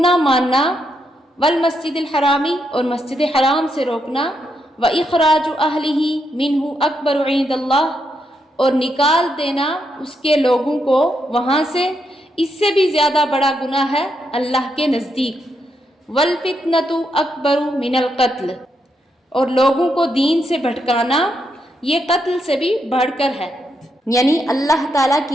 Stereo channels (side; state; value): both; normal; correlation 0.80